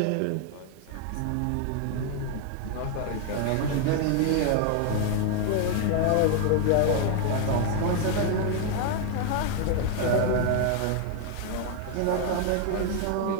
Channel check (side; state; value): both; different; correlation 0.01